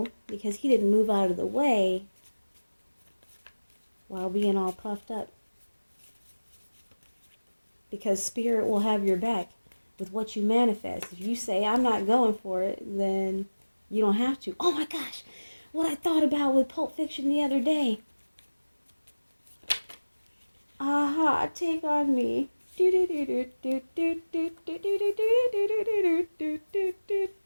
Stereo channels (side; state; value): both; inverted; correlation -1.00